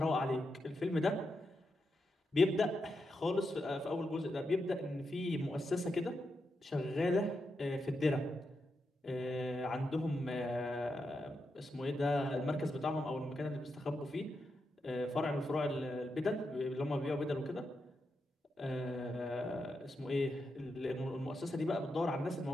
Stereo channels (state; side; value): normal; both; correlation 0.85